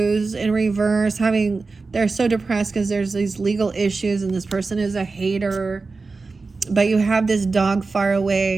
in reverse, they're so depressed because there's these legal issues and this person is a hater. But you have this dog far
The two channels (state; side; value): quieter; left; 4.0 dB